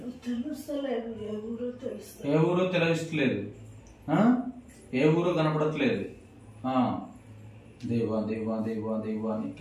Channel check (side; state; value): both; identical; correlation 1.00